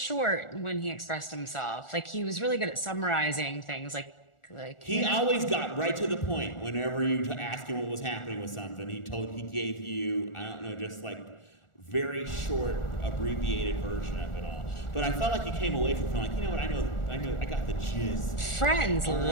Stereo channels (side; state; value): right; late; 1.4 ms